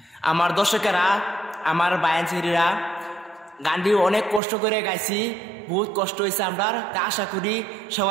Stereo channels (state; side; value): drops out; left; at 4.4 s